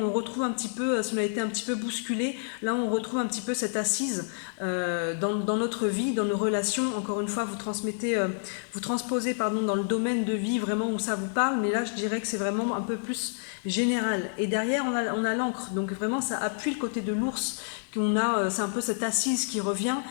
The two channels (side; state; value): right; silent; 59 dB below the other